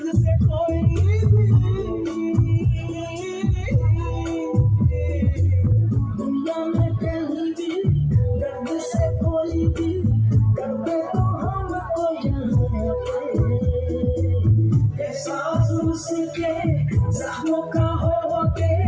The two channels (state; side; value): identical; both; correlation 1.00